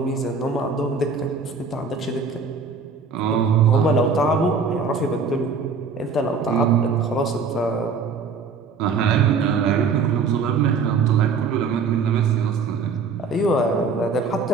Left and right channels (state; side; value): quieter; left; 4.9 dB